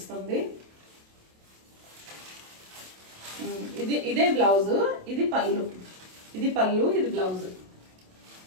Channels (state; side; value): late; left; 27 ms